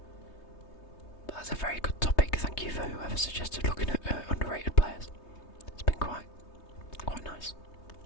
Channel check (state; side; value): late; right; 3.2 ms